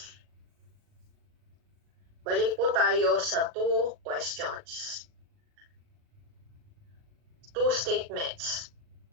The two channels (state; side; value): late; left; 39 ms